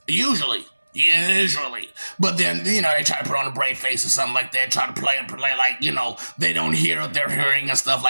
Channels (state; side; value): inverted; both; correlation -1.00